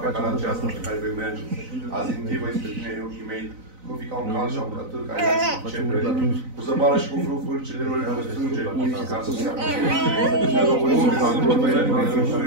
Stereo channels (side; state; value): left; late; 4.0 ms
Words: pe calea aceasta pe care vei merge. Azi închivă spre tine ochii mei, nu fi ca un cal și un cătâr care se cepre, cu zăbală și cu frufuri celor care strânge, ca să se apuce.